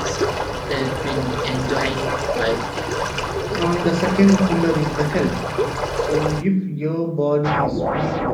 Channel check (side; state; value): both; identical; correlation 1.00